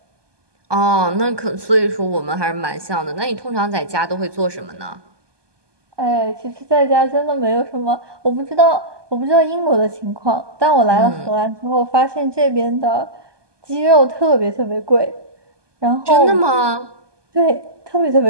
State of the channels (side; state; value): left; late; 1.2 ms